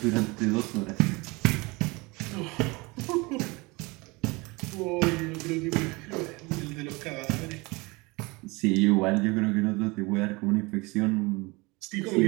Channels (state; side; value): quieter; left; 25.1 dB